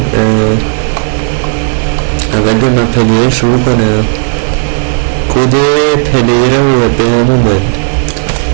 اول به من پلیر شروع کنم. کد پلیر رو به همون باید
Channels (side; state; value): left; silent; 72 dB below the other